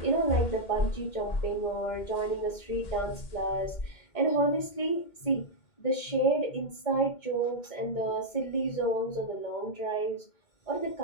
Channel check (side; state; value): right; late; 2.1 ms